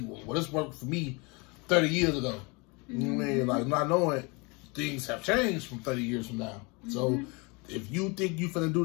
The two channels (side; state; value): right; quieter; 28.8 dB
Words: well, this worked for me 30 years ago. You know what I mean? Like, not knowing things have changed from 30 years from now. So if you think you finna do